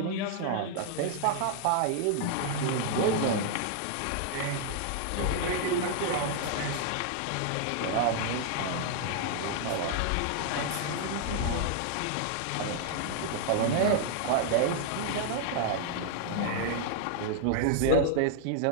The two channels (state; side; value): different; both; correlation 0.00